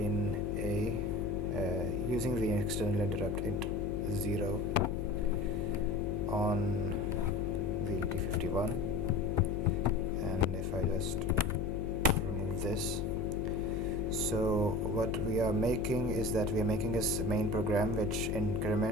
using the external interrupt int0 on the ET51. And if I just remove this, so what we are making is that we are making a main program which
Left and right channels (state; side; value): noise; left; hum, 5 dB below the sound